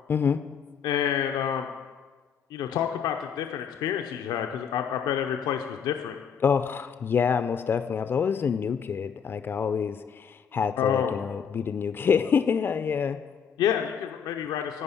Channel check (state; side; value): quieter; right; 7.1 dB